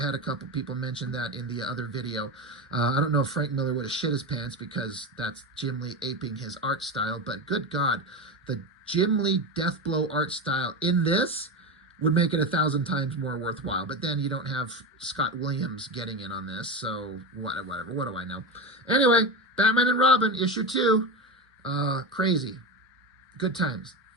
had a couple people mention that in the other video. I don't know if Frank Miller would have shit his pants because that's Jim Lee aping his art style, but good God, the Jim Lee Deathblow art style in this would make it 1,000 times more worthwhile. But then you don't have Scott Williams getting in on this, so whatever. What do I know? Anyway, Batman and Robin, issue 2. Crazy. Good times.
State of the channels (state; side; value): normal; both; correlation 0.20